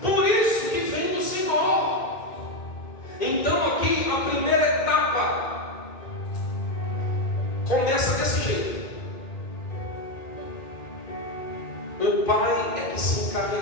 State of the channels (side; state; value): right; late; 2.5 ms